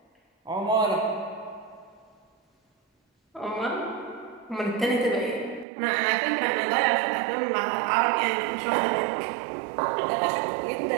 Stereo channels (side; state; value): left; drops out; at 5.7 s